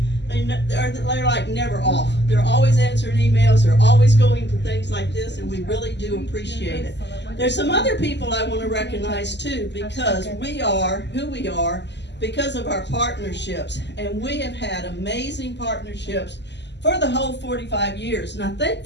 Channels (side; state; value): right; late; 0.51 ms